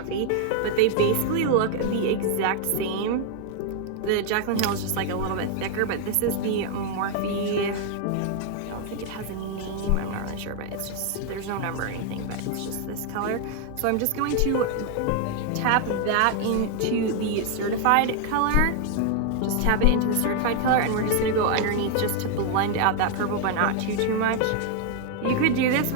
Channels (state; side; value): different; both; correlation 0.00